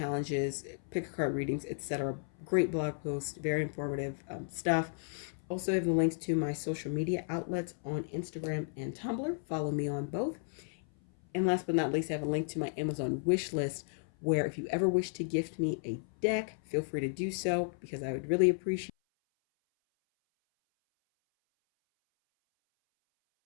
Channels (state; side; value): silent; right; 55 dB below the other